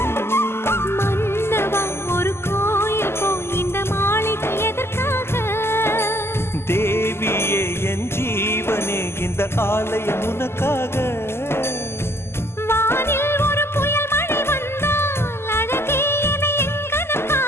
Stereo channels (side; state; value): right; late; 0.12 ms